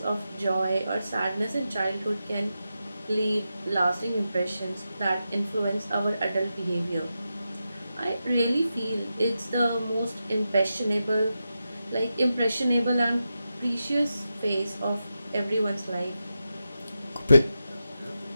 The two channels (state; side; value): inverted; both; correlation -0.89